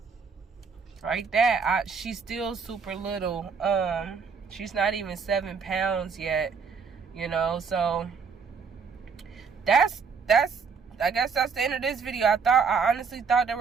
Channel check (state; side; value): quieter; left; 5.7 dB